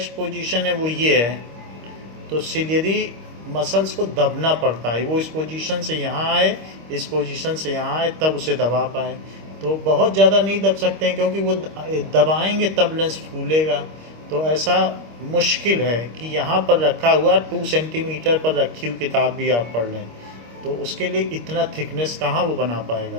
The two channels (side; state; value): left; late; 25 ms